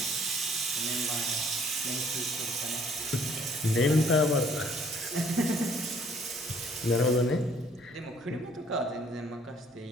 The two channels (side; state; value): both; normal; correlation 0.60